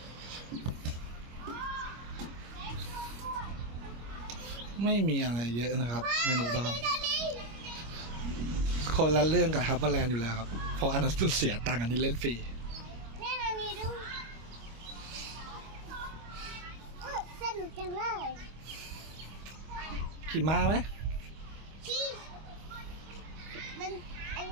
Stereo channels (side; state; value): left; late; 25 ms